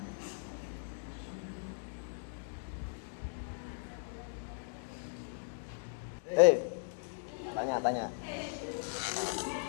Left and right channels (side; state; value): right; silent; 53 dB below the other